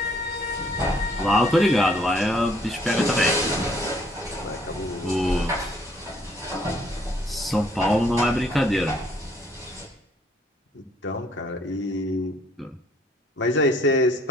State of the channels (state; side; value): normal; both; correlation 0.64